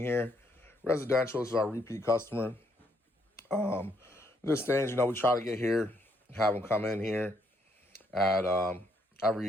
Residential, this is our repeat customer. This things, we try to get here, have them come in here at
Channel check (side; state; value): both; normal; correlation 0.72